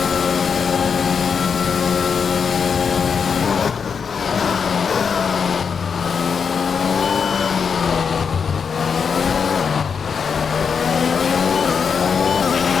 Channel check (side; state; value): right; quieter; 6.2 dB